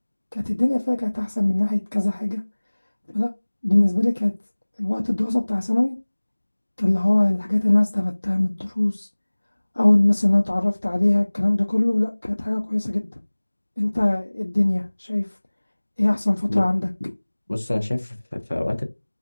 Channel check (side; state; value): both; inverted; correlation -1.00